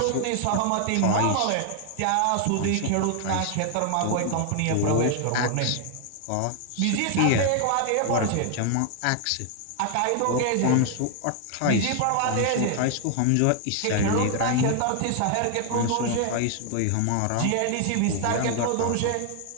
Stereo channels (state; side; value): different; both; correlation 0.00